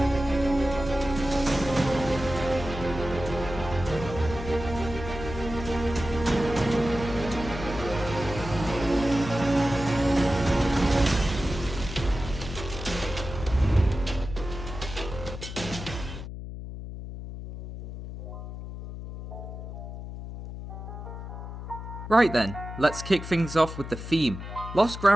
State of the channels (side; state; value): left; noise; hum, 9 dB below the sound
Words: Right then, let's kick things off with the theme. Lost